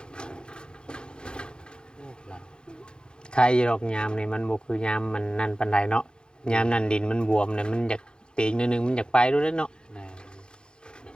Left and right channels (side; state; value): right; late; 0.049 ms